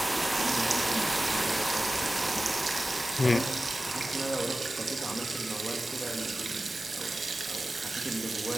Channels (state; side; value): normal; both; correlation 0.96